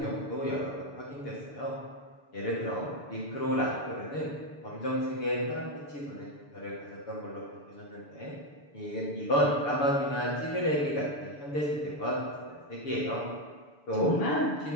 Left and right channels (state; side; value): late; right; 6.9 ms